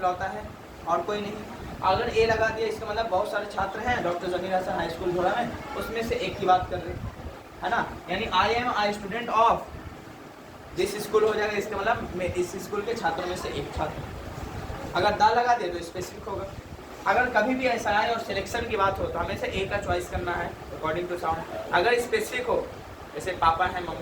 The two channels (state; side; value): identical; both; correlation 1.00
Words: है और कोई नहीं। अगर ए लगा दिया, इसका मतलब बहुत सारे छात्र हैं doctor Zameer Hasan high school झोड़ा में, उसमें से एक की बात कर रहे है ना। यानी आई am I student of this school हो जाएगा, इसका मतलब मैं इस स्कूल के छात्रों में से एक छात्र। अगर दा लगा दिया तो स्पेसिफिक होगा। अगर कभी भी ऐसा आए और सिलेक्शन की बात हो तो हमें से ए का चॉइस करना है अकॉर्डिंग टू साउंड। अगर स्पेसिफिक हो, जैसे पापा है,